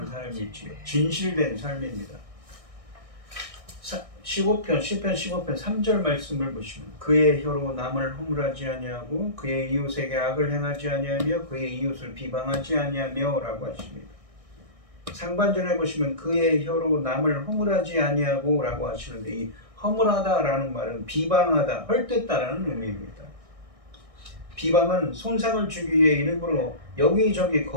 삶이지요. 진실된 삶입니다. 15편 시편 15편 3절 말씀을 보시면 그의 혀로 남을 허물하지 아니하고 그의 이웃에게 악을 행하지 아니하며 그의 이웃을 비방하지 아니하며라고 하십니다. 상반절에 보시면 그의 혀로 남을 허물하지 아니하고라고 하시는데 이 허물하다라는 말은 비방하다, 헐뜯다라는 의미입니다. 비방은 손상을 주기 위해 일부러 여기저기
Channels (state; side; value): late; left; 1.6 ms